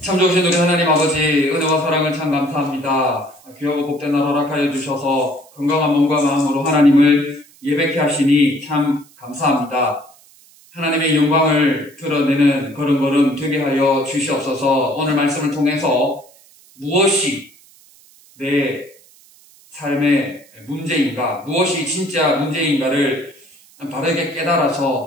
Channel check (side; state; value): right; noise; hiss, 27 dB below the sound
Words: 참 좋으신 우리 하나님 아버지, 은혜와 사랑을 참 감사합니다. 귀하고 복된 날 허락하여 주셔서 건강한 몸과 마음으로 하나님을 예배케 하시니 참 감사합니다. 하나님의 영광을 드러내는 걸음걸음 되게 하여 주시옵소서. 오늘 말씀을 통해서 무엇이 내 삶의 문제인가, 무엇이 진짜 문제인가를 바르게